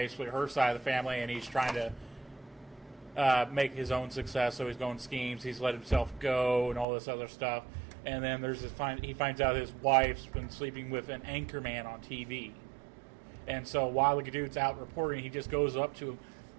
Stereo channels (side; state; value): left; drops out; at 6.9 s